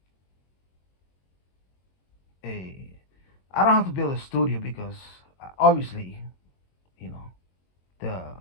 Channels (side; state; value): right; late; 22 ms